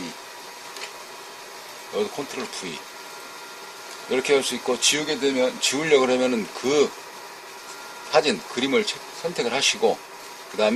여기도 컨트롤 V 이렇게 할 수 있고, 지우려고 하면은 그 사진 그림을 선택을 하시고 그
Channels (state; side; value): identical; both; correlation 1.00